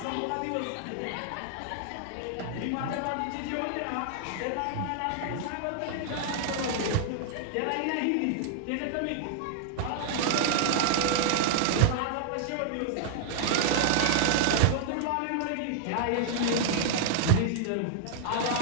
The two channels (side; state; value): both; different; correlation -0.01